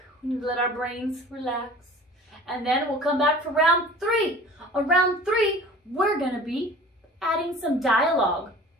We need to let our brains relax. And then we'll come back for round 3. On round 3, we're going to be adding some dialogue.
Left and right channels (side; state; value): both; normal; correlation 0.44